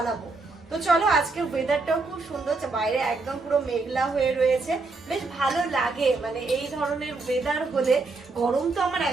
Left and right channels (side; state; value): left; quieter; 3.7 dB